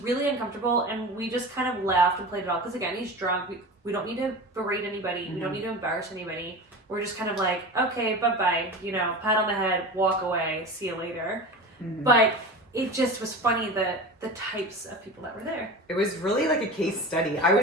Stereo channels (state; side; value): normal; both; correlation 0.31